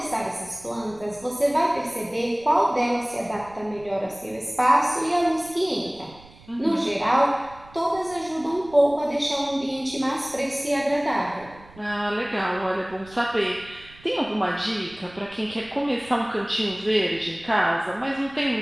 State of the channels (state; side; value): noise; right; rumble, 23 dB below the sound